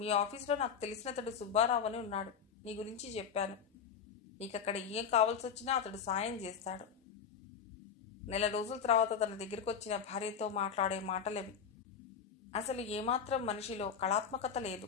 ఆఫీస్లో నాకు తెలిసినతడు సుబ్బారావు అని ఉన్నాడు. నీ గురించి చెప్పాను. నీకక్కడ ఏం కావాల్సి వచ్చినా అతడు సాయం చేస్తాడు. నెల రోజుల తర్వాత తన దగ్గరికి వచ్చిన భార్యతో మాట్లాడే మాటలవి. అసలు ఏమాత్రం మనిషిలో కళాత్మకత లేదు.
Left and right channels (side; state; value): right; quieter; 7.1 dB